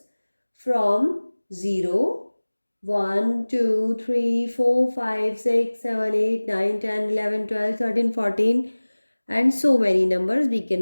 from 0, 1, 2, 3, 4, 5, 6, 7, 8, 9, 10, 11, 12, 13, 14 and so many numbers we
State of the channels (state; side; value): inverted; both; correlation -1.00